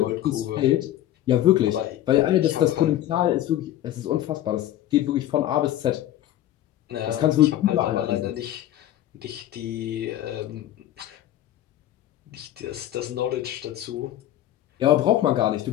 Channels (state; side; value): quieter; right; 12.9 dB